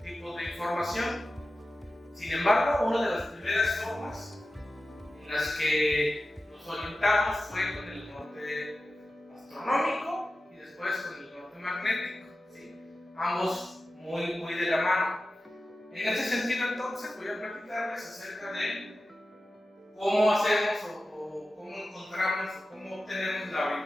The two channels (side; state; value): both; normal; correlation 0.94